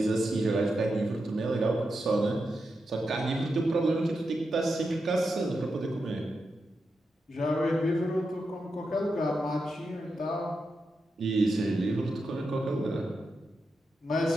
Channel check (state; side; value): normal; both; correlation 0.87